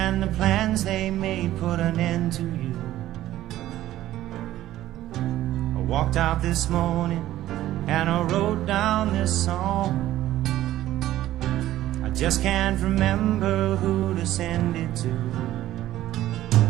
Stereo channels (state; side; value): quieter; left; 14.1 dB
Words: the plans they made put an end to you. I walked out this morning and I wrote down this song. I just can't remember who to send it to.